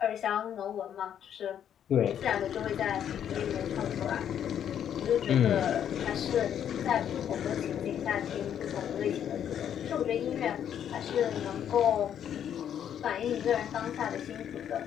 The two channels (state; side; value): quieter; right; 9.4 dB